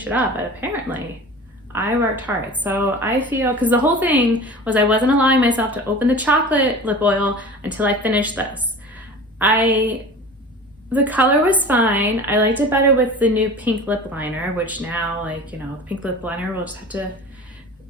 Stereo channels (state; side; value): normal; both; correlation 0.37